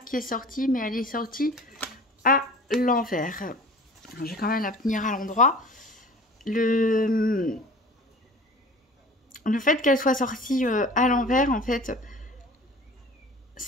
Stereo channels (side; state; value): both; normal; correlation 0.43